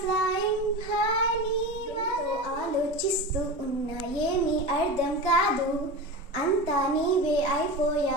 ఫ్లయింగ్ హై నీ. ఆలోచిస్తూ ఉన్నా ఏమీ అర్థం కాదు, అంతా నీవే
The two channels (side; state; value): both; normal; correlation 0.26